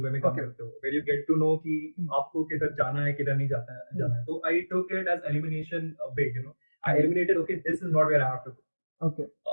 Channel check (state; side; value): inverted; both; correlation -1.00